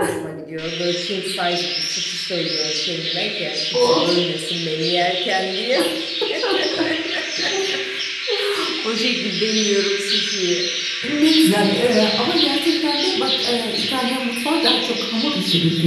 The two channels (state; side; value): identical; both; correlation 1.00